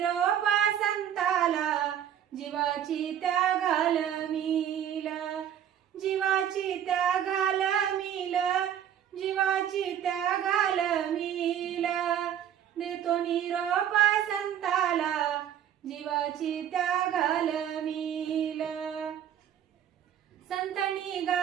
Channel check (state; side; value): quieter; left; 9.9 dB